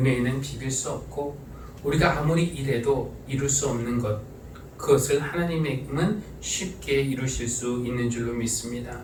비길 수 없고, 우리가 아무리 일해도 이룰 수 없는 것, 그것을 하나님은 쉽게 이루실 수 있는 줄로 믿습니다.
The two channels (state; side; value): identical; both; correlation 1.00